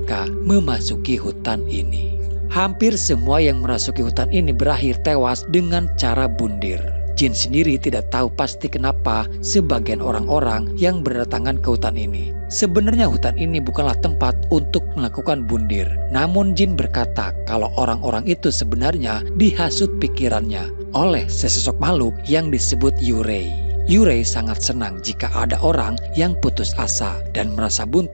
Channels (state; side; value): inverted; both; correlation -1.00